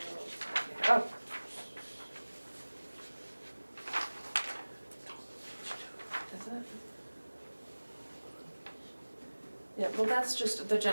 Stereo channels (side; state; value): both; inverted; correlation -1.00